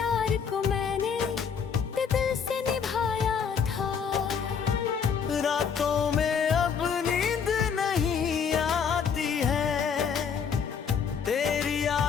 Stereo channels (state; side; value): quieter; right; 6.7 dB